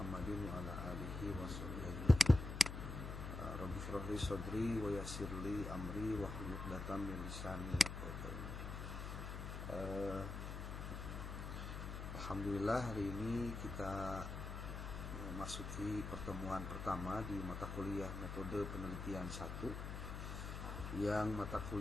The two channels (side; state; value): left; noise; hum, 6 dB below the sound